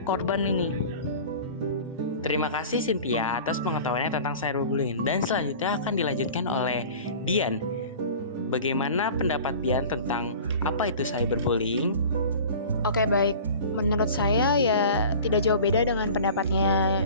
korban ini. Terima kasih Cynthia atas pengetahuannya tentang cyberbullying. Dan selanjutnya akan dilanjutkan oleh Dian. Bagaimana pendapat Dian tentang apa itu cyberbullying? Oke, baik. Menurut saya ya tidak jauh beda dengan pendapatnya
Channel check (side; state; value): both; inverted; correlation -0.40